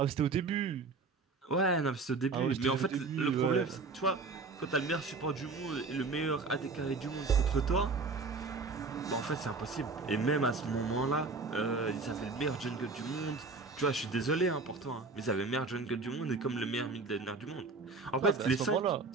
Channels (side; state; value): left; quieter; 4.0 dB